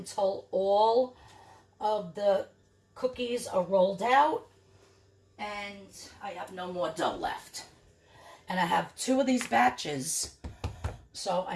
all of the cookies are rolled out and I have no more dough left. And I have 2 of these batches, so I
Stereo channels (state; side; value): identical; both; correlation 1.00